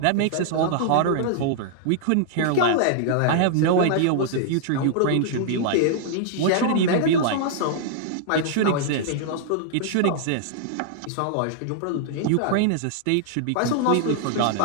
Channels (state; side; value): different; both; correlation -0.01